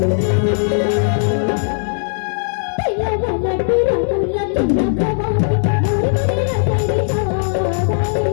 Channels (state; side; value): silent; right; digital silence